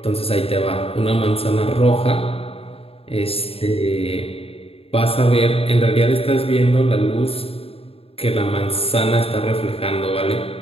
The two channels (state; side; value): late; right; 0.28 ms